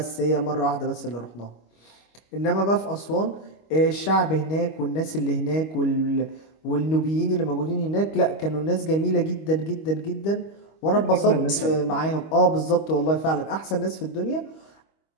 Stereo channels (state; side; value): late; right; 25 ms